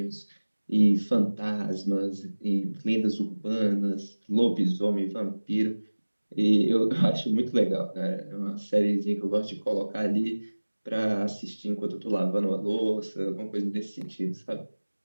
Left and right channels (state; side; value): inverted; both; correlation -1.00